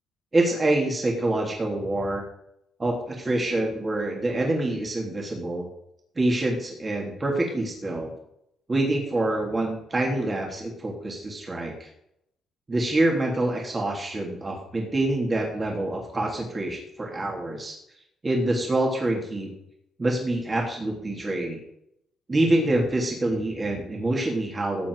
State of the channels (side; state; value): both; normal; correlation 0.89